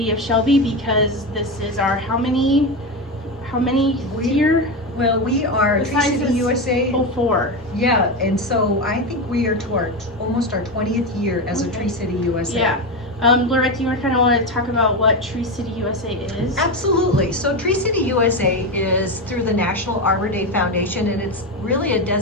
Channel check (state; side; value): normal; both; correlation 0.15